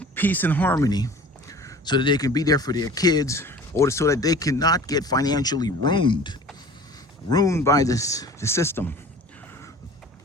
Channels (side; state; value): both; normal; correlation 0.43